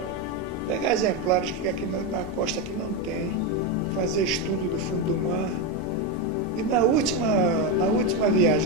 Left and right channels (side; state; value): both; normal; correlation 0.09